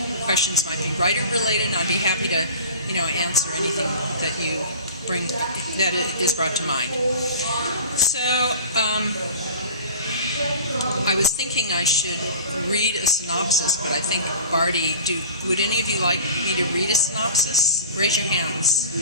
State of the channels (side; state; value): both; inverted; correlation -0.39